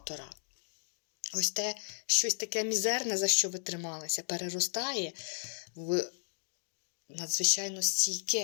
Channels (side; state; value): right; silent; 55 dB below the other